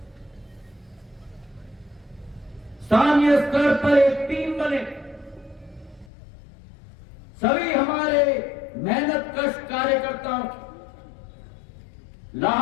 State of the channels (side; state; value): right; drops out; at 6.1 s